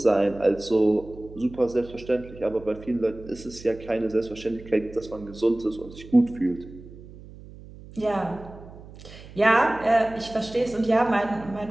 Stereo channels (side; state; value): right; noise; hum, 18 dB below the sound